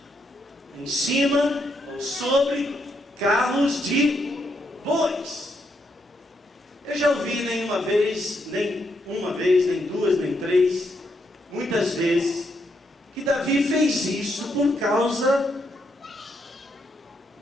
Em cima ou sobre carros de bois. Eu já ouvi nem uma vez, nem duas, nem três, muitas vezes, que Davi fez isso por causa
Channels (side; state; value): both; normal; correlation 0.78